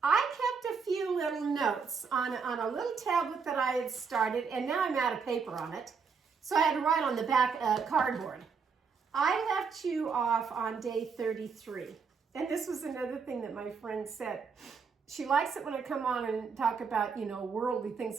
I kept a few little notes on a little tablet that I had started, and now I'm out of paper on it. So I had to write on the back cardboard. I left you off on day 33. And this was another thing that my friend said. She likes it when I come on and talk about, worldly things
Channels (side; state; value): left; quieter; 5.6 dB